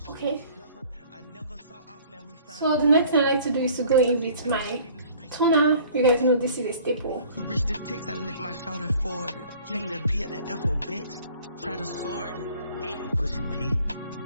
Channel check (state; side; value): inverted; both; correlation -0.52